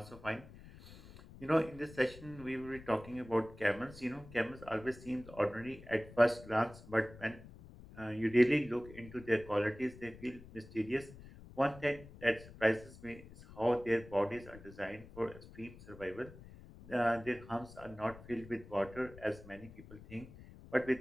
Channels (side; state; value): left; noise; rumble, 18 dB below the sound